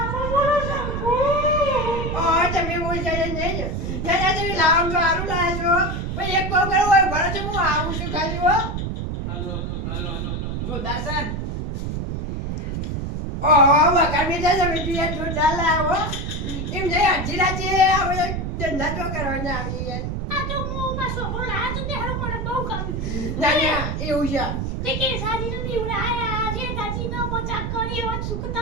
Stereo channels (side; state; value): right; noise; rumble, 3 dB below the sound